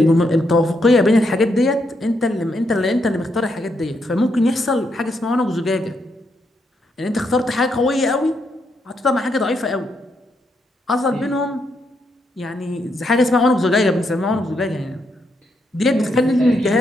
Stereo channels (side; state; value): both; normal; correlation 0.79